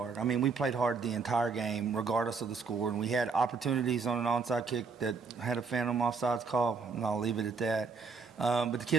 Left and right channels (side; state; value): left; quieter; 4.9 dB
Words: I mean, we played hard the entire game, regardless of the score. And we had opportunities on an onside kick that had a phantom offsides call, and I'll leave it at that. But the